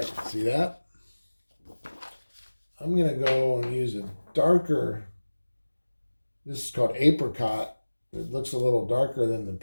see that? I'm going to go and use a darker, this is called apricot. It looks a little darker than the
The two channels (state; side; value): inverted; both; correlation -1.00